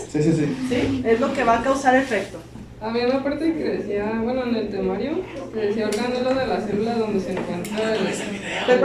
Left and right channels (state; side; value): identical; both; correlation 1.00